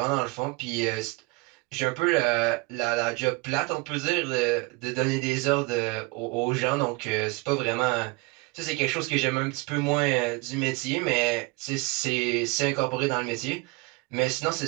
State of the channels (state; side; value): quieter; left; 25.6 dB